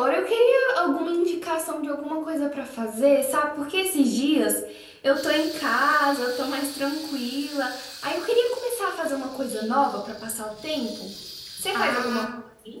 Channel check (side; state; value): both; identical; correlation 1.00